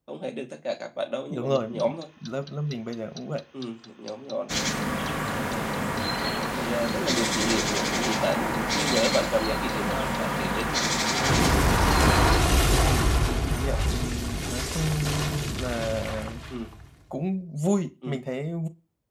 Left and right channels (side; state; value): both; identical; correlation 1.00